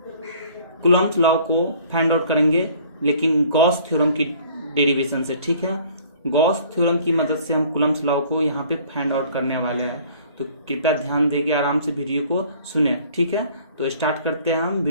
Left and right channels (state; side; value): inverted; both; correlation -0.54